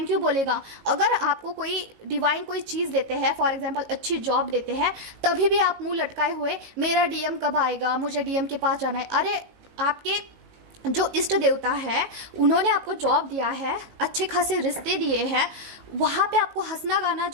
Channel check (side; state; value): left; late; 18 ms